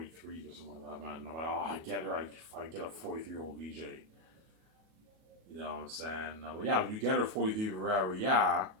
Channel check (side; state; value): left; late; 38 ms